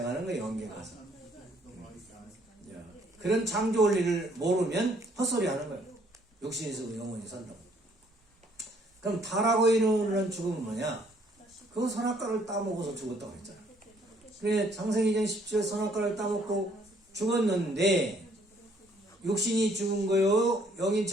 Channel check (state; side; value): normal; both; correlation 0.64